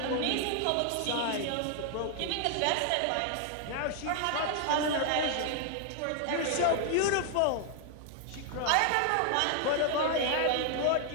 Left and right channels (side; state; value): both; different; correlation 0.00